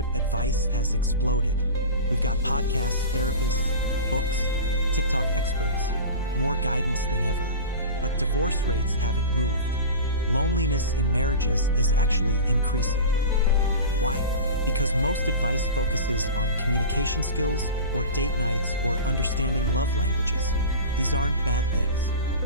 advice has exploded. We've got podcasts, therapists, books, TikTok experts, more guidance than ever. But divorce rates haven't moved. Loneliness in marriages is actually increasing. Why? Because most advice focuses on communication skills or date nights or understanding love languages. These aren't bad things,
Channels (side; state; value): both; inverted; correlation -0.32